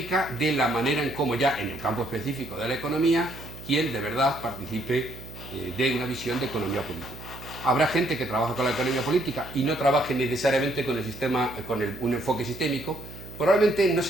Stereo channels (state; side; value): noise; right; hum, 15 dB below the sound